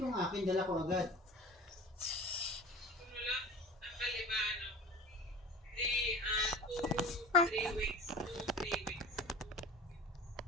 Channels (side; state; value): both; normal; correlation 0.37